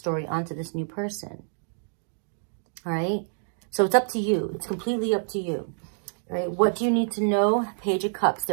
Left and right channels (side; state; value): left; silent; digital silence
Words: onto this new person. All right? So it's up to you. It's completely up to you. All right? What do you need to know? Page of Cups.